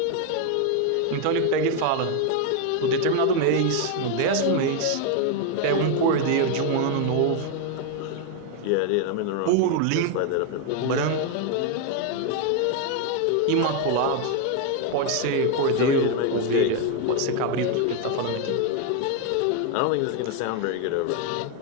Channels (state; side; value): different; both; correlation 0.01